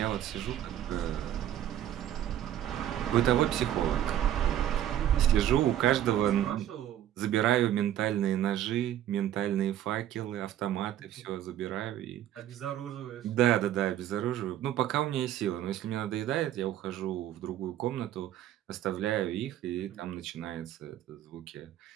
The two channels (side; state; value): left; quieter; 11.7 dB